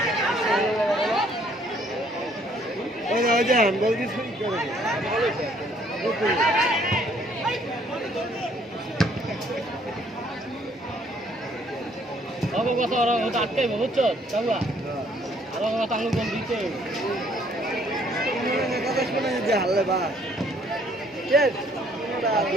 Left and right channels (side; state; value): both; normal; correlation 0.63